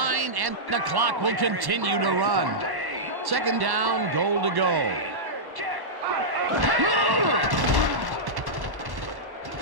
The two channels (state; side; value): late; left; 1.1 ms